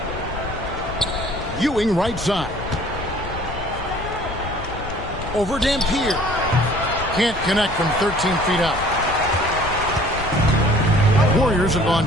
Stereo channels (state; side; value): noise; left; rumble, 10 dB below the sound